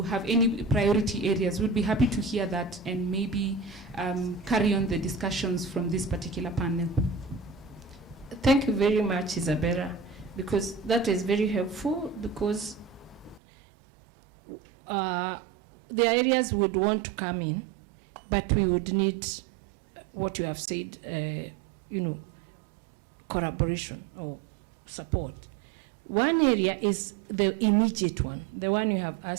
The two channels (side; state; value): left; drops out; at 13.4 s